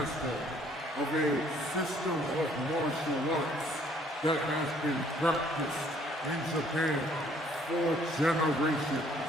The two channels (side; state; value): both; normal; correlation 0.62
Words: of a system of martial arts that has been practiced in Japan for generations.